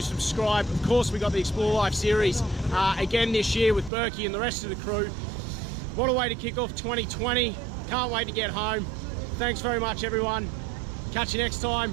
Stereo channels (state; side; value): drops out; left; at 3.9 s